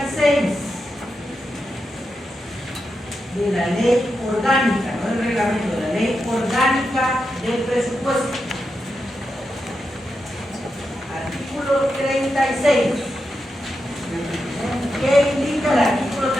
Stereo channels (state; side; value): normal; both; correlation 0.87